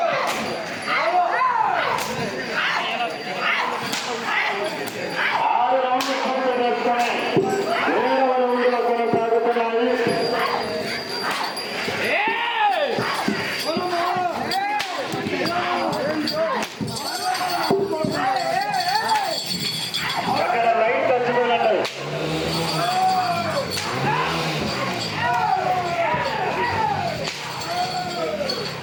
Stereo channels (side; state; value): both; identical; correlation 1.00